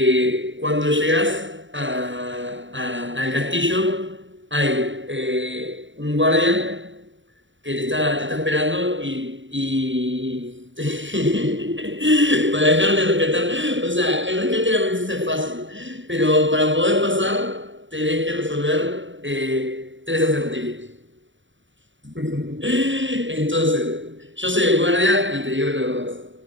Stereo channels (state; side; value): late; left; 0.55 ms